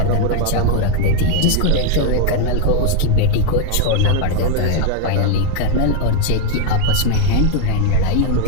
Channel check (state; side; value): different; both; correlation 0.01